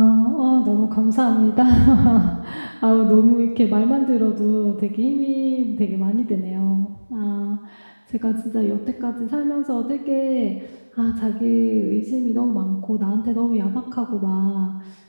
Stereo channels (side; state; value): both; inverted; correlation -1.00